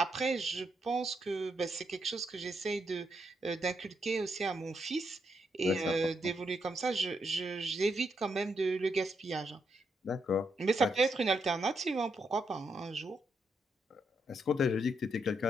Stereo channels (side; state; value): both; normal; correlation 0.79